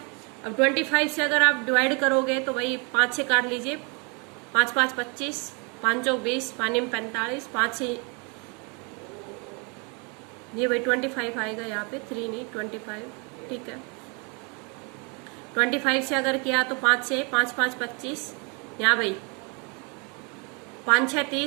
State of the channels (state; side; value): quieter; left; 33.3 dB